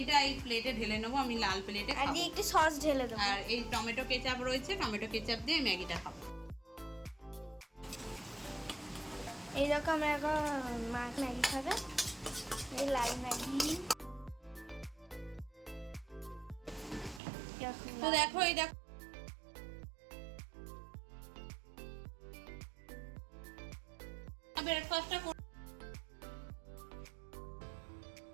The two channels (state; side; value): drops out; left; at 17.2 s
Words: এই প্লেটে ঢেলে নেবো, আমি লাল প্লেটে আর খাবো। দিয়ে একটু সস ঢেলে দেবো। আর এই টমেটো কেচাপ রয়েছে, টমেটো কেচাপ দিয়ে ম্যাগিটা খাবো। এই দেখো আমরা এখন মা ম্যাগি খাবে, এই লাল ম্যাগি। তো দেখো, এই দেখো ব্রেকফাস্টটা